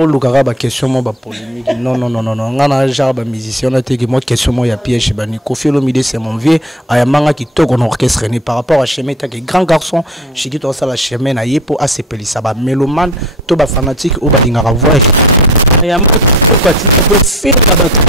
lukaka ba question mo ba polémique. Non ngana genre ba musicien na te que moi question mo ya piège ba ni Kofi Olomide c'est mon vieux ayamanga qui toko na orchestre ni par rapport à chemin ta que grand garçon Shikuto ça la chemin na yepo a sepeli ça ba mélomane to ba fanatique ou ba dingaka voix. Ayamanga quoi tu peux faire ba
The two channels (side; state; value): both; normal; correlation 0.41